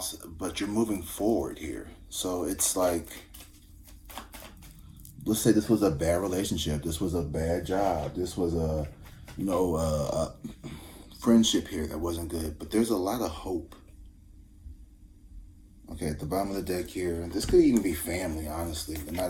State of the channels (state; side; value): identical; both; correlation 1.00